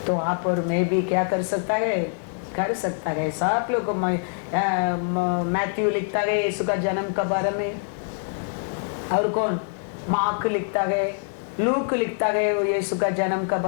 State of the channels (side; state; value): right; silent; digital silence